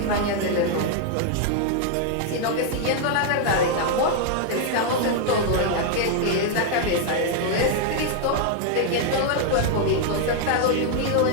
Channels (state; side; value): different; both; correlation 0.00